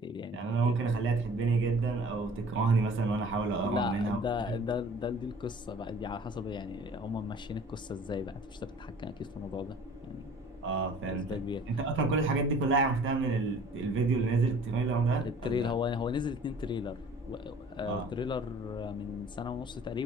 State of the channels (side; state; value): both; normal; correlation 0.49